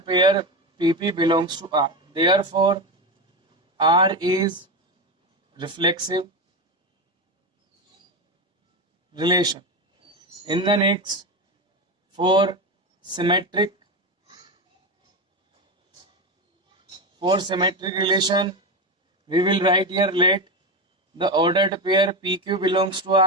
pair PP belongs to R. Therefore R is reflexive relation. In the next, for symmetric relation, we will write here let the ordered pair PQ belongs to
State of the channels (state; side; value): normal; both; correlation 0.16